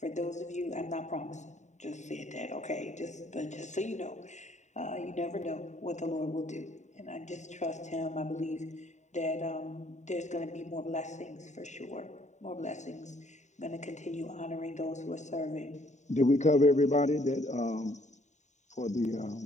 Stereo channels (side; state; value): right; late; 0.34 ms